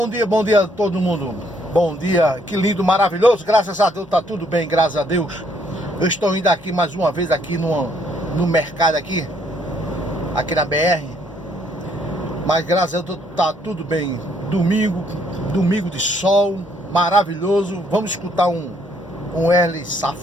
dia, bom dia a todo mundo. Bom dia, que lindo, maravilhoso. Graças a Deus, tá tudo bem, graças a Deus. Eu estou indo aqui mais uma vez aqui no mercado aqui na BR. Mas graças a Deus tá tudo bem. Domingo de sol, maravilhoso. Vamos escutar um L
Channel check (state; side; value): normal; both; correlation 0.68